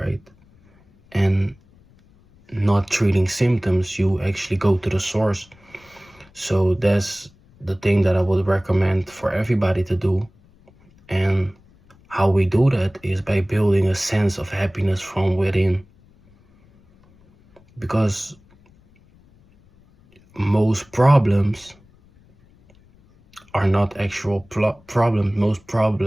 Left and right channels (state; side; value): noise; left; rumble, 29 dB below the sound